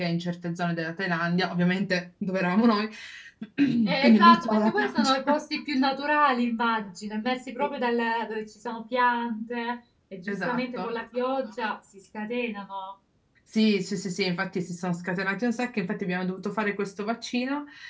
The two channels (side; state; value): both; identical; correlation 1.00